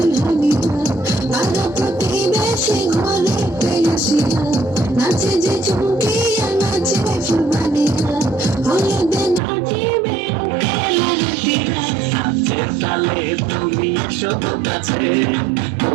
পাড়া প্রতিবেশী ঘরেতে আসিয়া নাচে যে চুমকিয়া নাচে ফুলবানিয়া হলুদে নাচিবে তালে তুমি শুধু কাছে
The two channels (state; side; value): drops out; left; at 9.4 s